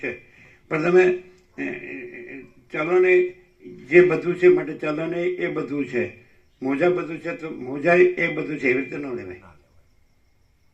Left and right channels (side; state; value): both; identical; correlation 1.00